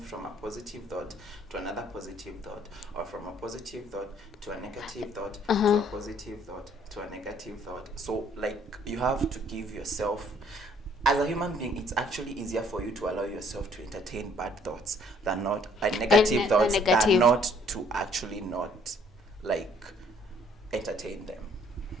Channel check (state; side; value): normal; both; correlation 0.63